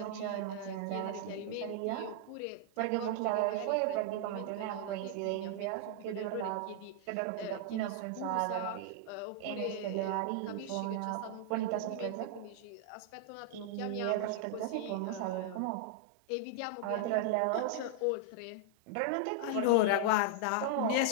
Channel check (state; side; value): different; both; correlation -0.01